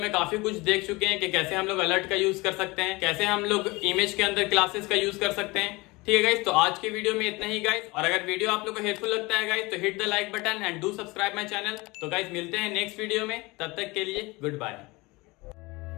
काफी कुछ देख चुके हैं कि कैसे हम लोग अलर्ट का यूज कर सकते हैं, कैसे हम लोग इमेज के अंदर क्लासेस का यूज कर सकते हैं, ठीक है गाइस। तो आज की वीडियो में इतना ही गाइस, और अगर वीडियो आप लोग को हेल्पफुल लगता है गाइस तो hit the like button and do subscribe my channel. तो गाइस मिलते हैं नेक्स्ट वीडियो में, तब तक के लिए गुड बाय।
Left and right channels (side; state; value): right; quieter; 23.5 dB